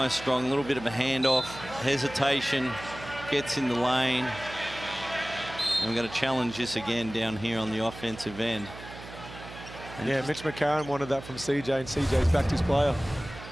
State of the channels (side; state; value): right; noise; hum, 14 dB below the sound